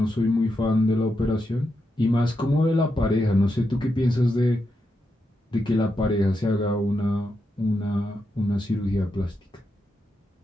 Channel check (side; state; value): both; normal; correlation 0.85